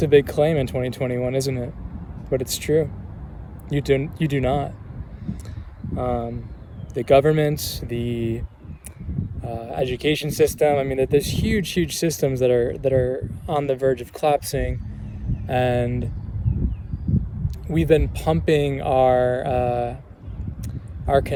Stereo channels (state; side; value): identical; both; correlation 1.00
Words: a big claim in 2021, isn't it? But it's true. You do not. The government, the education system. I mean, there's huge systems that are on the verge of collapsing, and we've been pumping our